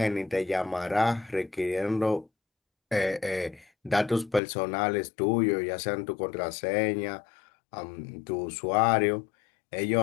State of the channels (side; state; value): right; drops out; at 4.4 s